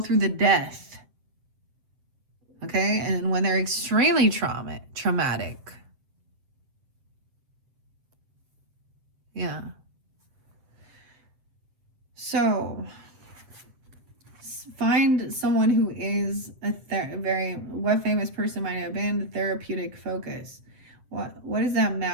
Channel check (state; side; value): late; left; 7.7 ms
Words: the death, okay? And when they're extremely traumatic, yeah. So find someone who is a very, what famous person might have been the therapeutic focus. What does that